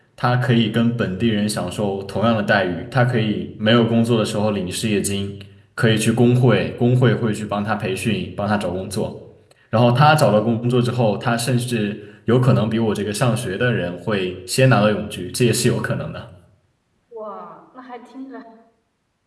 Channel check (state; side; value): identical; both; correlation 1.00